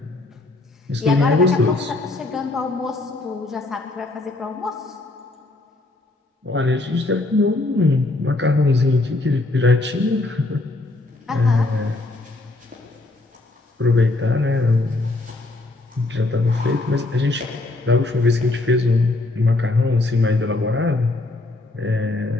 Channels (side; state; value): right; quieter; 3.0 dB